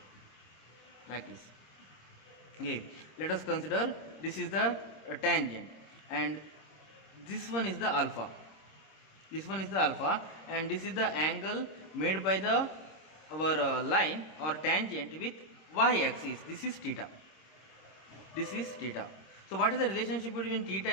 like this. Okay, let us consider this is the tangent and this one is the alpha. This one is the alpha and this is the angle made by the our line or tangent with y-axis. This is theta. This is theta. So what is the relationship between theta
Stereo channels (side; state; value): right; late; 26 ms